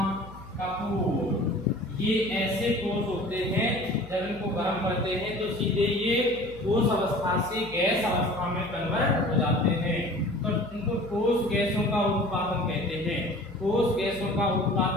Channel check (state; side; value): noise; left; hum, 18 dB below the sound